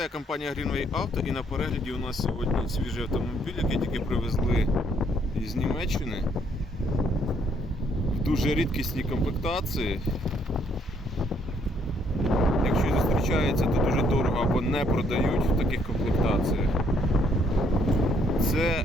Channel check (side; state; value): both; normal; correlation 0.68